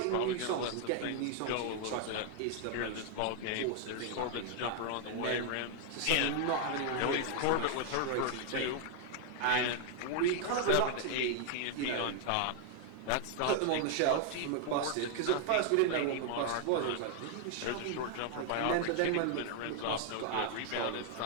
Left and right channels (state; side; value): different; both; correlation 0.00